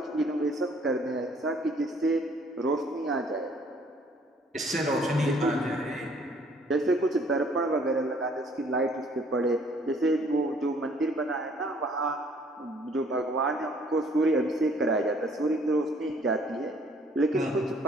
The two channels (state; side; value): normal; both; correlation 0.60